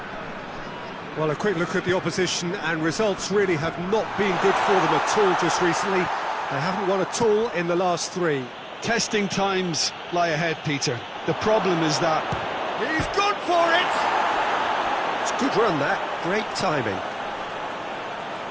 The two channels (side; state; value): both; identical; correlation 1.00